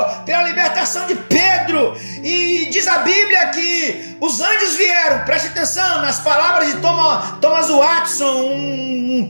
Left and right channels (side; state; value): both; inverted; correlation -1.00